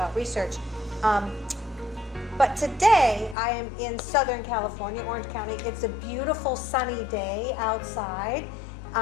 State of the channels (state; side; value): drops out; right; at 3.4 s